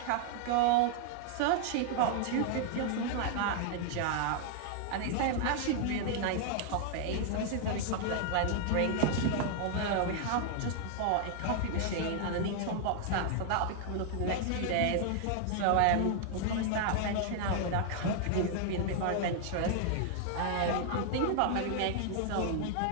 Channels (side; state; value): both; different; correlation -0.01